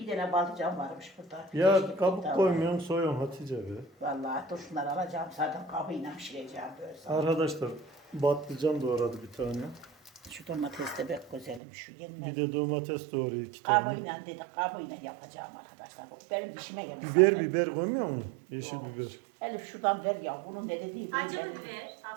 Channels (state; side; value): drops out; left; at 11.6 s